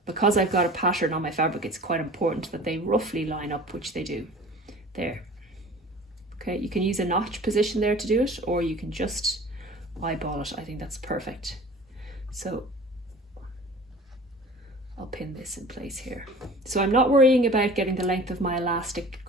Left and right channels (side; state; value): both; normal; correlation 0.43